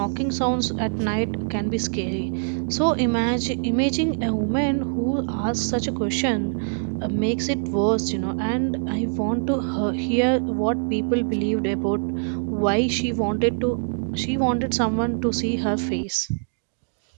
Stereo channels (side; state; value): left; silent; digital silence